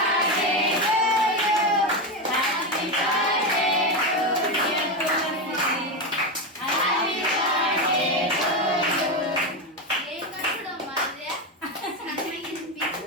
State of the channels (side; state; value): both; normal; correlation 0.13